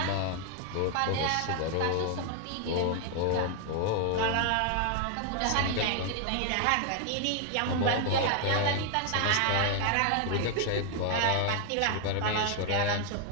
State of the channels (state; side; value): different; both; correlation 0.00